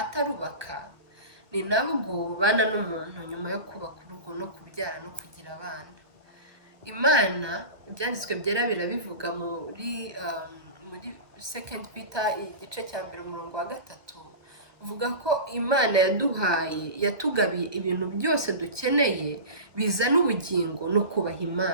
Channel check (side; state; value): left; late; 1.4 ms